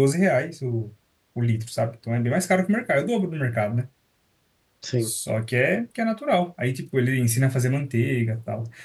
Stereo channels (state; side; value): identical; both; correlation 1.00